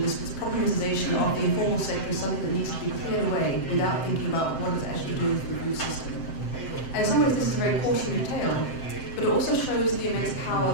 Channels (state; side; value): late; right; 7.7 ms